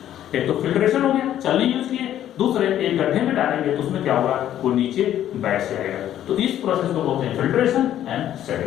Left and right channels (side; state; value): right; quieter; 11.5 dB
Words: एक तो फिल्ट्रेशन हो गया, चलनी यूज किए, दूसरे एक गड्ढे में डालेंगे तो उसमें क्या होगा, वो नीचे बैठ जाएगा। तो इस प्रोसेस को बोलते हैं फिल्ट्रेशन एंड